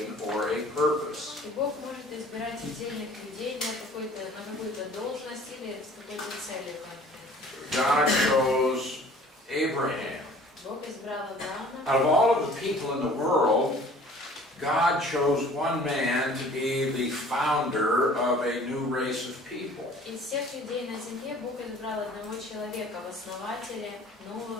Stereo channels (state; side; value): normal; both; correlation 0.50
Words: or a purpose. И Бог может избирать отдельных людей на какую-то должность или с какой-то целью конкретной. God chose Abraham. Бог избрал Авраама. Out of all of the people in the world, God chose one man to be the founder of a new race of people. Из всех людей на земле Бог избрал одного человека в основателе нового